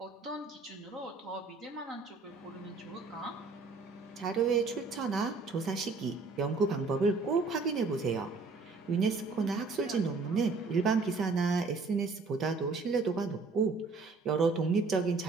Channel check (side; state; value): left; quieter; 4.0 dB